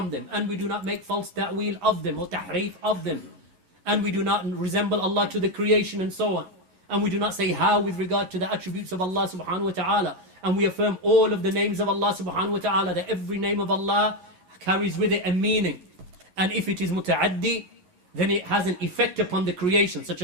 them, and we do not make false ta'wil of them or tahrif of them, and we do not resemble Allah to the creation and so on. And we do not say how with regard to the attributes of Allah subhanahu wa ta'ala. And we affirm all of the names of Allah subhanahu wa ta'ala, that every name of Allah carries with it a meaning. And if it is muta'addi, then it has an effect upon the creation, such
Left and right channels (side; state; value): left; late; 11 ms